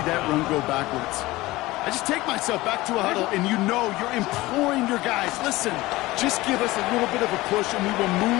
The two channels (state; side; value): quieter; right; 19.2 dB